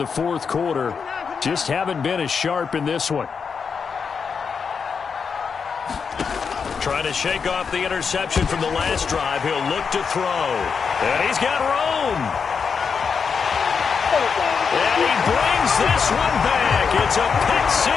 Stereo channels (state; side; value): quieter; right; 5.9 dB